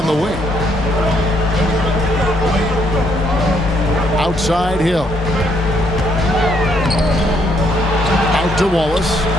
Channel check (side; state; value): both; normal; correlation 0.71